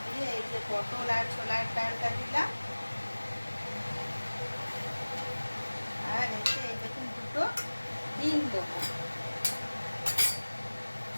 দিয়ে এই যে পটল আর ছোলার ডালটা দিলাম, আর এতে এই দেখুন দুটো ডিম দেবো।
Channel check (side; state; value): both; inverted; correlation -1.00